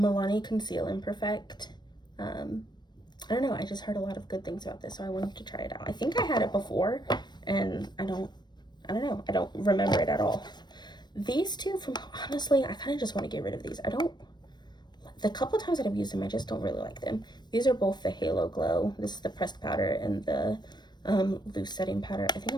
Conceal Imperfect. I don't know, I just heard a lot of good things about this, so I wanted to try it out. I think I had it before, and I don't know, I don't remember it at all. These two from, honestly, I kind of just want to get rid of these. The couple times that I've used them, I just don't really like them. These are both the Halo Glow. This is the pressed powder and the loose setting powder. I think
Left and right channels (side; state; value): right; late; 0.21 ms